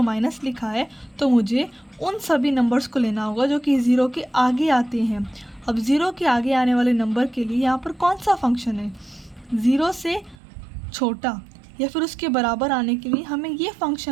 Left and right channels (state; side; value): drops out; left; at 10.4 s